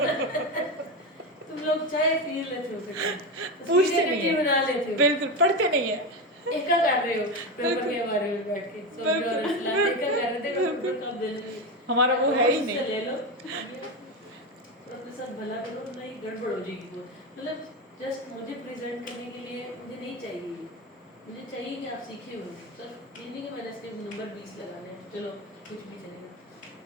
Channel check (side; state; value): both; normal; correlation 0.17